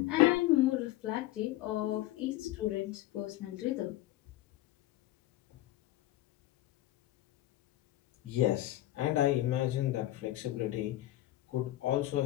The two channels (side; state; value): right; quieter; 15.5 dB